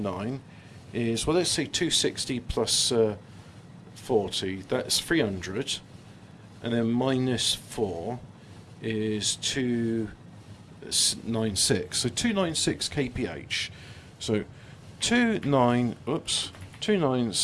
is, well, let's say 260 plus 40. That's 300. And then minus 4 is 296. So 296 kph. So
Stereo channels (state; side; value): identical; both; correlation 1.00